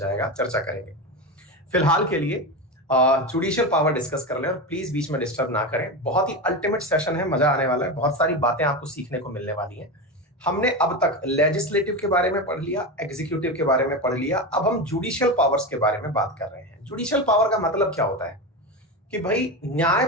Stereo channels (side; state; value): both; normal; correlation 0.19